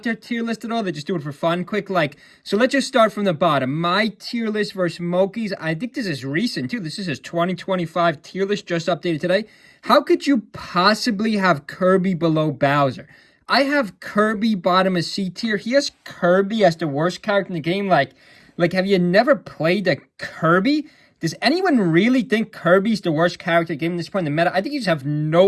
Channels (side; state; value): both; identical; correlation 1.00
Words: their tier list at all. They just do it for fun, quick. So let's just start from the bottom. My tier list versus Moky's. I think this is recent, too. This is his 2025 tier list, just updated today. How could you possibly have Kirby below Bowser? I have Kirby bottom of C tier. He has Kirby as the worst character in the game. Like, have you never played a Kirby? Does anyone really think Kirby's the worst character in the game at this point in the meta? I think you just have